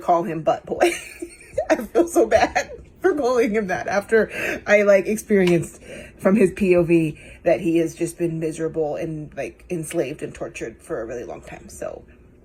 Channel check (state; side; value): identical; both; correlation 1.00